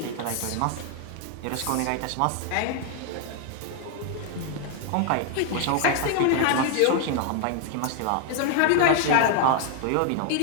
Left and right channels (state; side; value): different; both; correlation 0.00